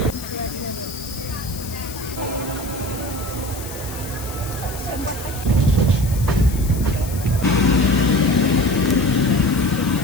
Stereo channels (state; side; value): noise; left; hiss, 13 dB below the sound